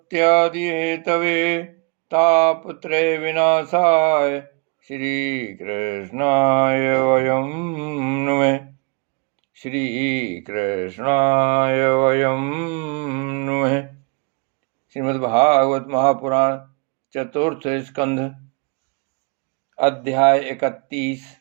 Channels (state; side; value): quieter; left; 31.3 dB